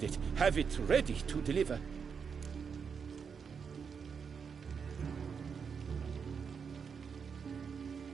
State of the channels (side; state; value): left; quieter; 6.3 dB